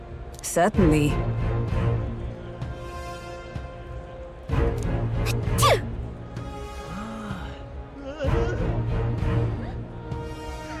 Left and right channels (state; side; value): identical; both; correlation 1.00